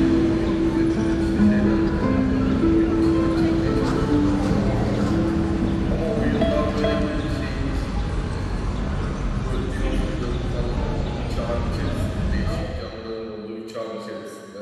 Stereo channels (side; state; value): both; identical; correlation 1.00